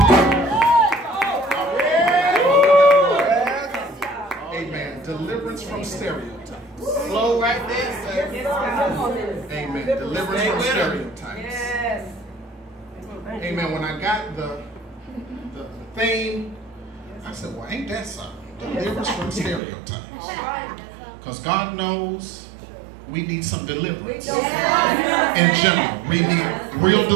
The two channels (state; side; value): drops out; left; at 19.6 s